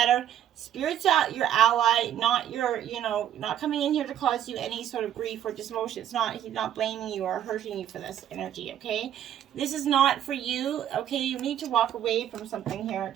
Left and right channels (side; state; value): left; quieter; 10.7 dB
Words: Spirit's your ally, not not coming in here to cause you any sort of grief or dismotion. He's not blaming you or hurting you for this energy, okay? This is not for you, okay? You need to walk away from something here,